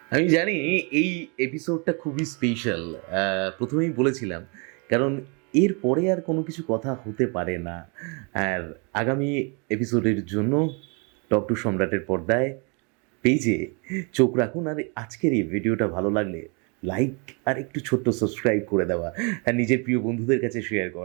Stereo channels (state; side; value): quieter; left; 33.5 dB